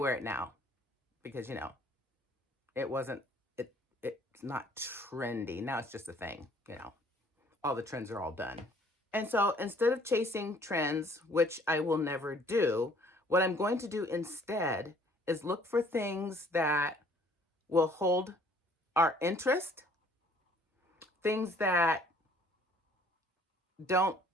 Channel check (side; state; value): both; normal; correlation 0.58